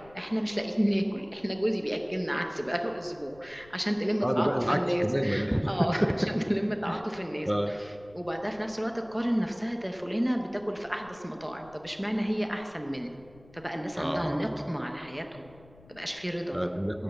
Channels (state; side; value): noise; left; rumble, 24 dB below the sound